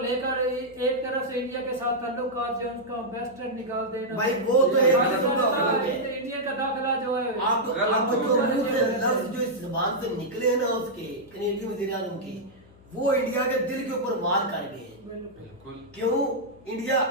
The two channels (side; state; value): left; noise; hum, 25 dB below the sound